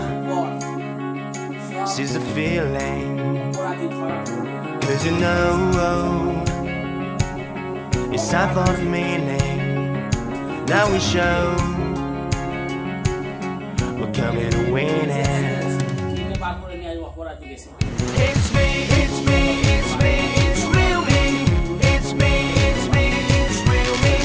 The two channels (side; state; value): both; identical; correlation 1.00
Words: seize the feeling, অপরাধী ধরা পড়বে। 'cause you know it's time for the meaning. Now we show we're coming to win it. কিনে বার করে নিয়ে আসবো অপরাধী গেছে। It's me, it's me, it's me, it's real me. It's me, it's me, it's real me.